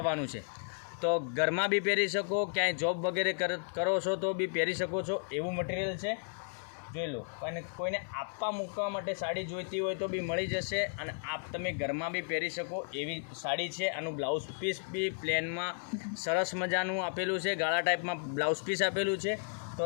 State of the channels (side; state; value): right; silent; 55 dB below the other